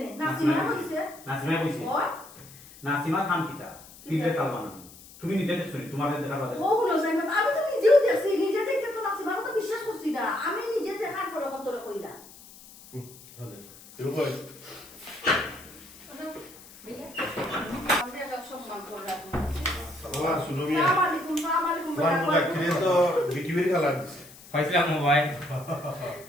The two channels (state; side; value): noise; left; hiss, 20 dB below the sound